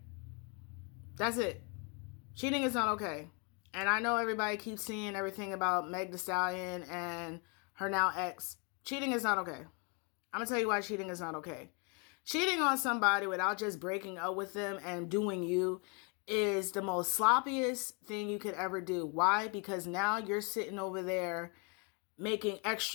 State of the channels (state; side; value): quieter; right; 34.3 dB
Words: That's it. Cheating is not okay. And I know everybody keeps seeing everything about Meg Thee Stallion and her now ex. Cheating is not okay. I'm going to tell you why cheating is not okay. Cheating on somebody without just breaking up with them and doing you is the most sloppiest thing you could ever do. Why? Because now you're sitting over there making